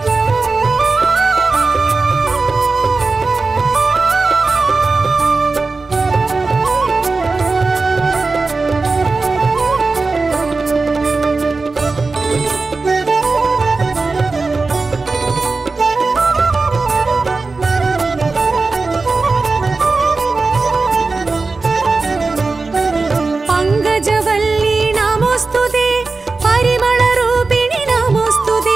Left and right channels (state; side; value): quieter; left; 3.9 dB